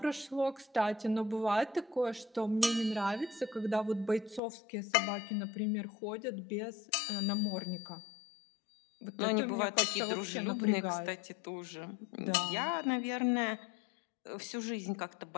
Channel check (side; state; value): right; drops out; at 4.4 s